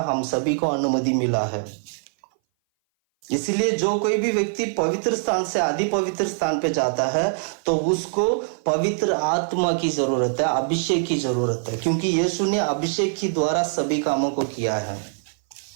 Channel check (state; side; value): silent; left; 59 dB below the other